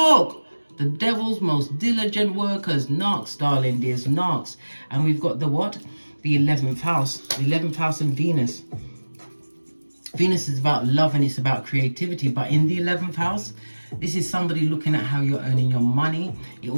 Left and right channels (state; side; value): inverted; both; correlation -1.00